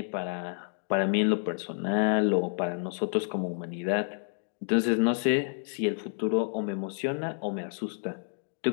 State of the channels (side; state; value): right; silent; 58 dB below the other